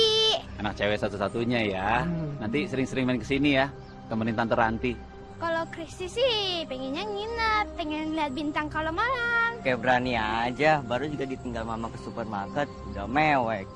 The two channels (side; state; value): both; identical; correlation 1.00